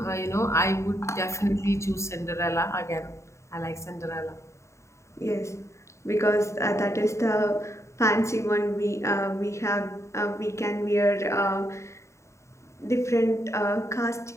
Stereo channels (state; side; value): late; right; 0.14 ms